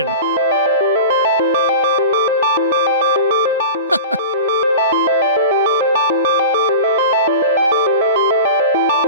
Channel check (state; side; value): inverted; both; correlation -0.32